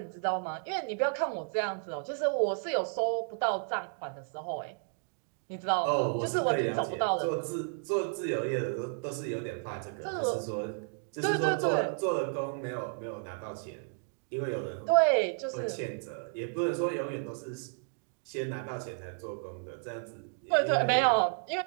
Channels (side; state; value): left; silent; 56 dB below the other